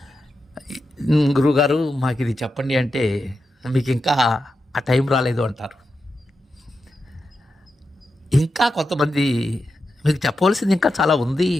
గురువుగారు మాకు ఇది చెప్పండి అంటే, మీకు ఇంకా ఆ టైం రాలేదు అంటారు. ఇంకా కొంతమంది, మీకు చెప్పవలసింది ఇంకా చాలా ఉంది,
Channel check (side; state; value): both; normal; correlation 0.88